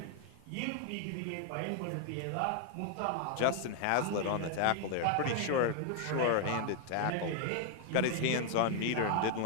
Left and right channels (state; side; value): different; both; correlation 0.00